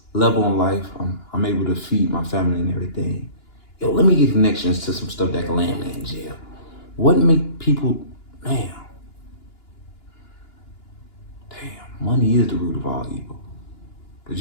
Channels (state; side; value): late; right; 2.9 ms